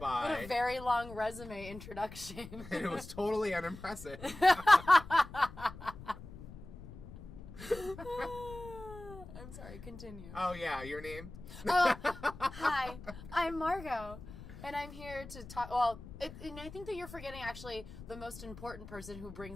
What a very long resume introduction. And it was totally unimpressive. I'm sorry, continue. Oh, yeah, your name? Hi, I'm Margot, and I'm here to talk, and I think that you're forgetting, actually, the most important person who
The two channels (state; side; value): noise; left; rumble, 14 dB below the sound